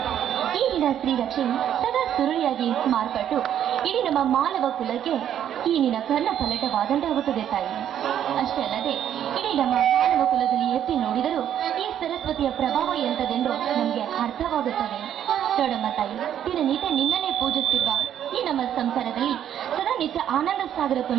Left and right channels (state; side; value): quieter; left; 10.2 dB